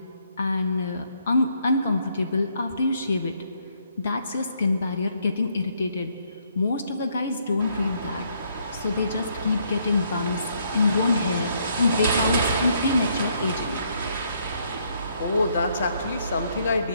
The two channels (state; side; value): inverted; both; correlation -0.71